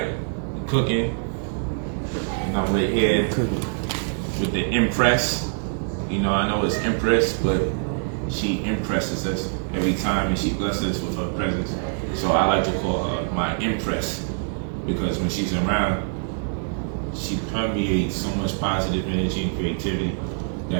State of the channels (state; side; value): silent; left; digital silence